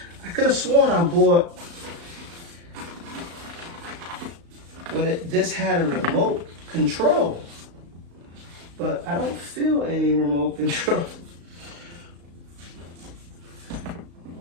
I could have sworn I bought, but this had a remote control, but I don't feel any remote control.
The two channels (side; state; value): left; late; 35 ms